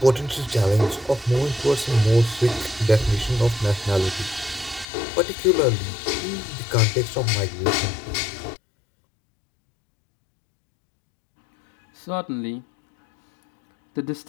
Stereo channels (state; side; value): drops out; right; at 4.9 s